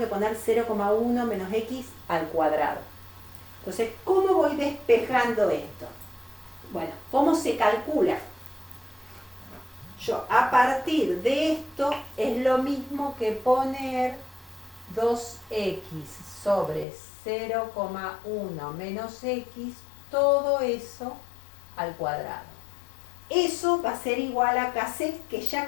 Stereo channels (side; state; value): right; drops out; at 16.9 s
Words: poner 0,1 menos x al cuadrado. Entonces, ¿cómo voy despejando esto? Bueno, ¿cómo se calcula? Yo, a partir de esto, es lo mismo que poner 2x sobre 0,1 menos x, todo eso al cuadrado. Eso va a ser igual a Kc, que ya